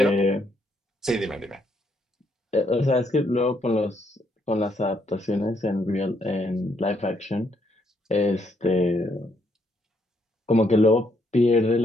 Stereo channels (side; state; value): both; normal; correlation 0.73